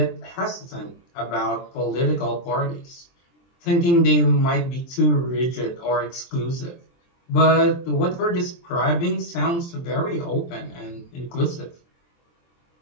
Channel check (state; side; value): late; right; 23 ms